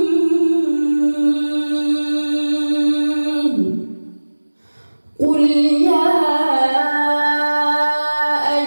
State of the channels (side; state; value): both; inverted; correlation -1.00